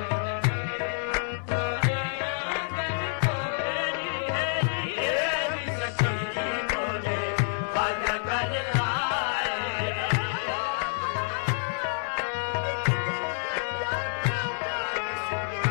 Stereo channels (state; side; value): silent; right; 59 dB below the other